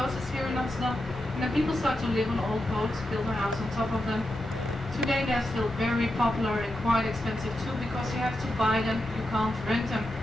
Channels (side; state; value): both; normal; correlation 0.88